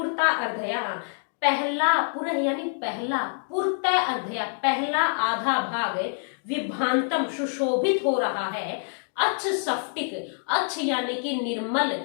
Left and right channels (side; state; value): right; silent; 61 dB below the other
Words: अर्धया, पहला, पुरः यानी पहला, पूर्ता अर्धया पहला आधा भाग, विभांतम सुशोभित हो रहा है, अच्छ स्फटिक, अच्छ यानी कि निर्मल,